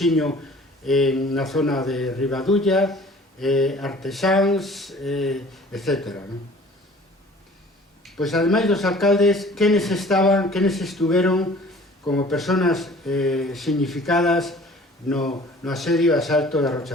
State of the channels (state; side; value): normal; both; correlation 0.49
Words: na zona de Ribadulla, artesáns, etc. Pois, ademais dos alcaldes, quenes estuveron como personas significadas no asedio e asalto da